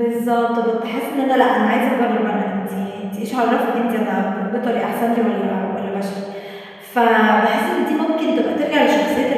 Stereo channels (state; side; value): identical; both; correlation 1.00